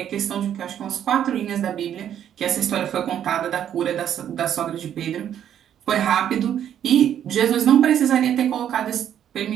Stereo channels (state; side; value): quieter; left; 9.9 dB